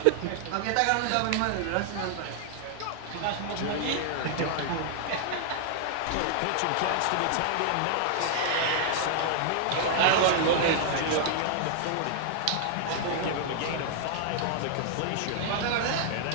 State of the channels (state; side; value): different; both; correlation -0.01